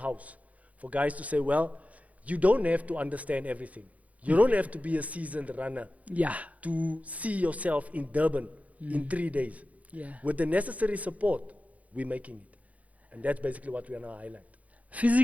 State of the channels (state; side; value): late; left; 0.069 ms